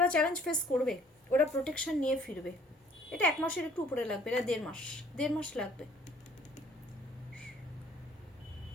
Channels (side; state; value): both; normal; correlation 0.57